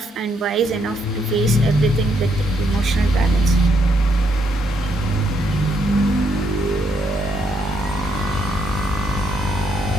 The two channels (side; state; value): both; normal; correlation 0.74